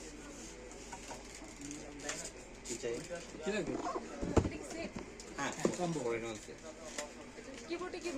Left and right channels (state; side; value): identical; both; correlation 1.00